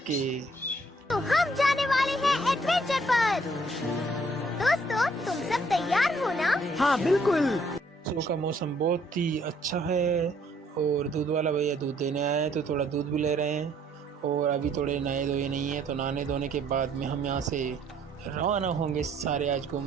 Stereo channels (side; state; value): both; normal; correlation 0.64